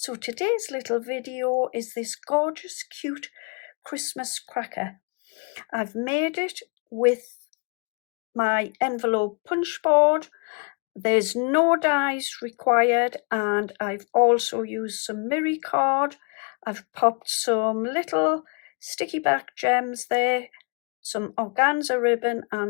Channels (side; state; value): right; quieter; 35.2 dB